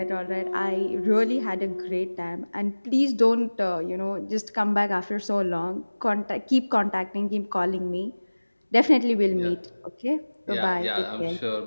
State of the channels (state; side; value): inverted; both; correlation -1.00